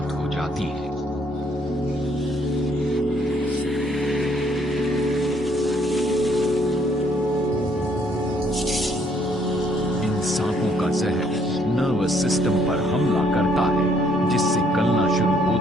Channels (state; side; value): normal; both; correlation 0.67